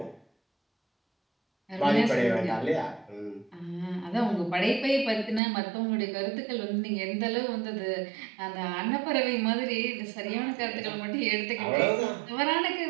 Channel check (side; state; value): left; drops out; at 5.4 s